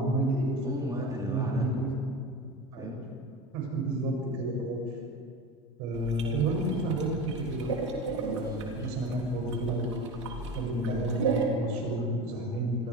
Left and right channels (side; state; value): both; normal; correlation 0.29